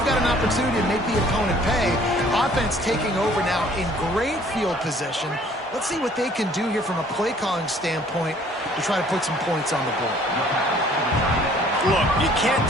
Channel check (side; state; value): both; normal; correlation 0.57